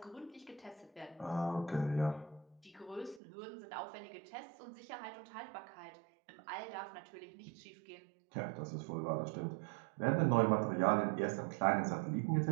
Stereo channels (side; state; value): left; drops out; at 3.2 s